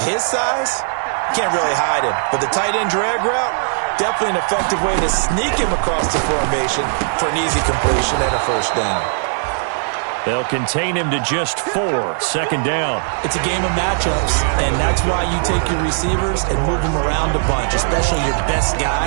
his size, can't really hide him. But the tight end drag route, definitely an effective way to sneak him across the formation for an easy completion and a first down. They'll contain him to just 4. Second down. It's a game of matchups, and that's why you take your receivers and move them around a bunch, especially your best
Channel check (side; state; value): left; silent; digital silence